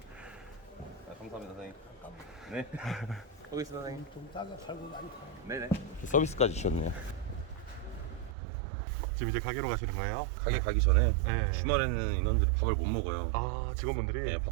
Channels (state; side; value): drops out; left; at 8.3 s